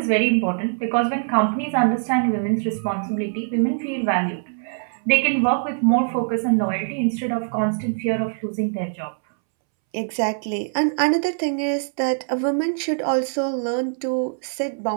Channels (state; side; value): silent; left; 64 dB below the other